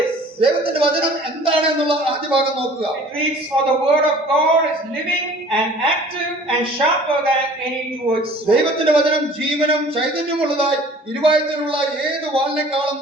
is. ദൈവത്തിന്റെ വചനം എന്താണ് എന്നുള്ള ആദ്യ ഭാഗം നോക്കുക. It reads, for the word of God is living and active and sharper than any two-edged sword. ദൈവത്തിന്റെ വചനം ജീവനും ചൈതന്യമുള്ളതായി ഇരുവായത്തിലുള്ള ഏത് വാളിനേക്കാളും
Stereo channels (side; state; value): both; normal; correlation 0.49